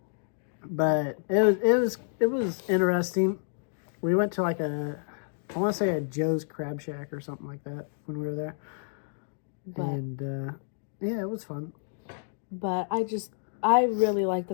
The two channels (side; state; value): right; silent; digital silence